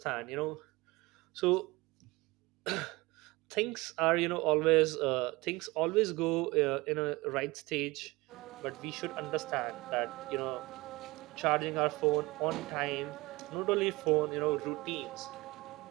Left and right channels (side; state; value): left; quieter; 21.9 dB